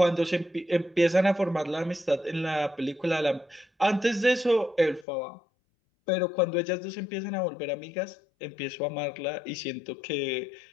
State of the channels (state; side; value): drops out; right; at 5.1 s